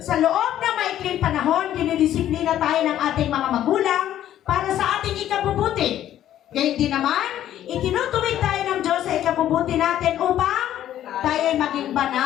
loob ng maikling panahon, dinidisiplina tayo ng ating mga magulang para sa ating ikabubuti. Gayun din naman, itinutuwid tayo ng Diyos sa ikabubuti natin upang tayo ay maging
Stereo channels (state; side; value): quieter; right; 11.9 dB